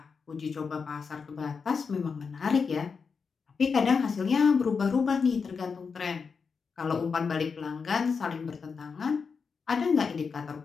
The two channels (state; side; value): quieter; right; 5.4 dB